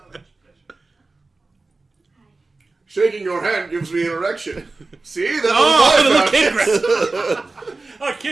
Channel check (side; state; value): left; quieter; 3.5 dB